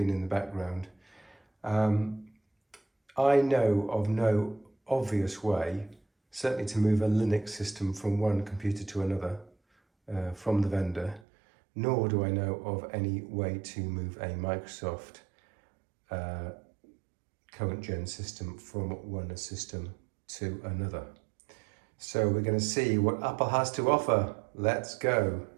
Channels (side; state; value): left; drops out; at 11.2 s